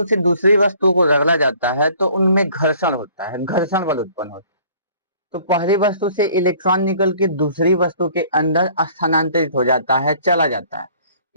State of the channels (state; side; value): inverted; both; correlation -0.55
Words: से दूसरी वस्तु को रगड़ा जाता है तो उनमें घर्षण होता है, घर्षण बल उत्पन्न होता है। तो पहली वस्तु से इलेक्ट्रॉन निकल के दूसरी वस्तु के अंदर स्थानांतरित हो जाता है, चला जाता है।